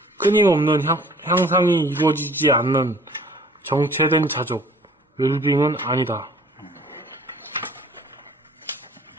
끊임없는 향상이 이루어지지 않는 정체된 자족, 웰빙은 아니다.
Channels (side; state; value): both; normal; correlation 0.52